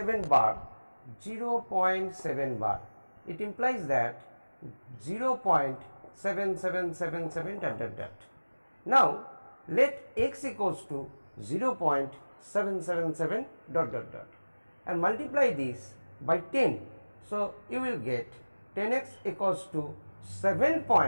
bar, 0.7 bar. It implies that 0.7777 dot dot dot. Now let x equals to 0.777 dot dot dot and multiply this by 10. So you will get 10x equals to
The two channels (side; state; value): both; inverted; correlation -1.00